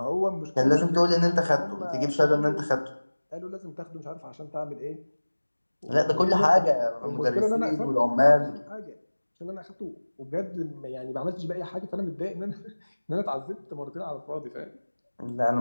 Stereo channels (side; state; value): both; inverted; correlation -1.00